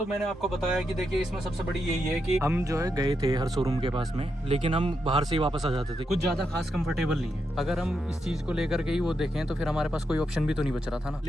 मैंने आपको बताया कि देखिए इसमें सबसे बड़ी यही है कि हम जो है गए थे हर शोरूम के पास में, लेकिन हम बाहर से ही वापस आ जाते थे। कुछ ज़्यादा खास कंफर्टेबल नहीं है। अगर हम इस चीज़ को लेकर के ही वो देखें तो फिर हमारे पास कोई ऑप्शन भी तो नहीं बच रहा था ना।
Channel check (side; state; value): both; normal; correlation 0.84